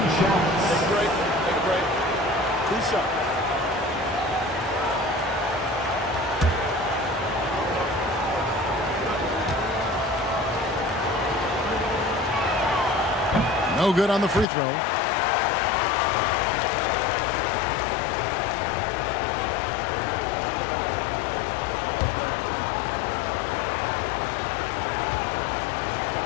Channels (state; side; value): drops out; right; at 14.5 s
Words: shots. Take a break. 2 shots. No good on the free throw.